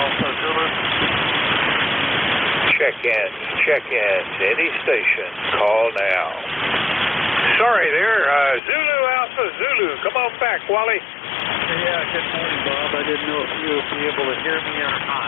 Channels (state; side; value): drops out; right; at 8.6 s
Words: Zulu. Check-in to any station. Call now. Sorry there, Zulu Alpha Zulu. Come on back, Wally. Yeah, good morning, Bob. I didn't know if you would be able to hear me or